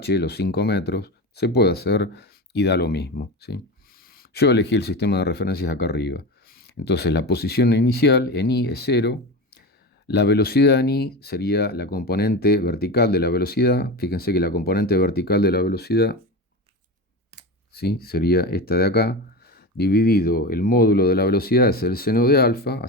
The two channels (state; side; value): normal; both; correlation 0.24